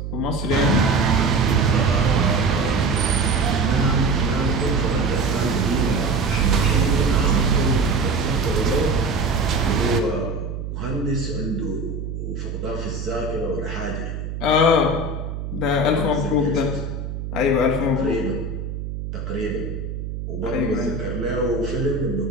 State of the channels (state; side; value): noise; right; hum, 6 dB below the sound